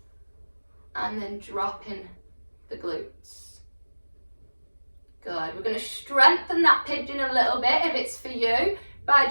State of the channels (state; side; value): inverted; both; correlation -1.00